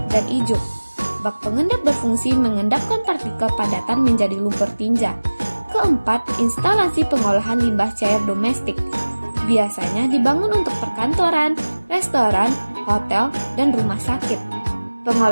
dan ijuk. Bak pengendap berfungsi mengendapkan partikel padatan menjadi lumpur tinja. Keempat, instalasi pengolahan limbah cair domestik. Biasanya dibangun untuk perkantoran, restoran, hotel, dan rumah sakit.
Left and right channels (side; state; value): both; inverted; correlation -1.00